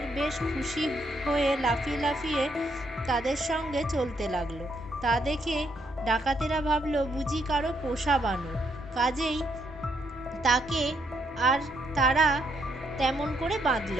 বেশ খুশি হয়ে লাফিয়ে লাফিয়ে তাদের সঙ্গে চলতে লাগলো। তা দেখে ডাকাতেরা ভাবলো বুঝি কারো পোষা বানর, কাজেই তাকে আর তারা তেমন করে বাঁধল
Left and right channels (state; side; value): normal; both; correlation 0.75